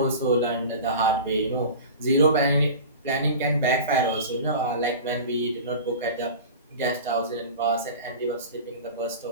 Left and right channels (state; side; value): inverted; both; correlation -0.34